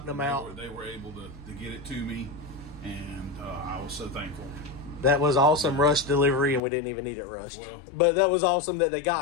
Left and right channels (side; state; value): right; drops out; at 6.6 s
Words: them out. They were able to get it to me, and I was so thankful. That was awesome rush delivery, and we didn't even need it rushed. Well, but that was awesome that they